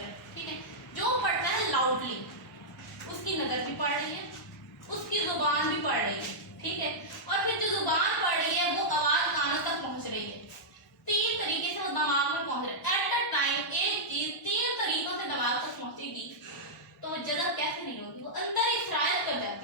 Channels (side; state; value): both; normal; correlation -0.10